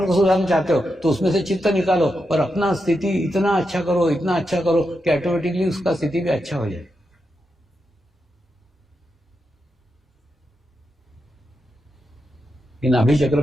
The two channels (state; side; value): normal; both; correlation 0.86